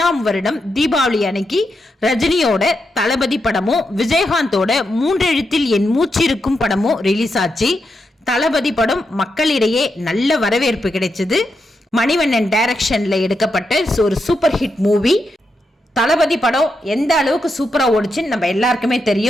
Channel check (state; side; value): normal; both; correlation 0.84